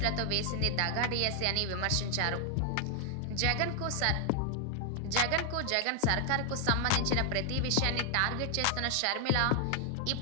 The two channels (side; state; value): both; different; correlation 0.00